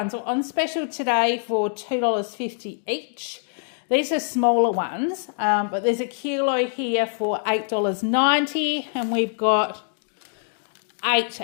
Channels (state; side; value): silent; right; 62 dB below the other